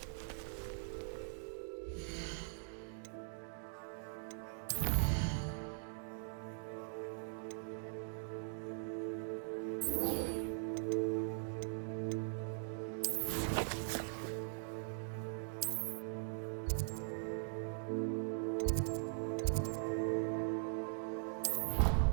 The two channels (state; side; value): silent; left; digital silence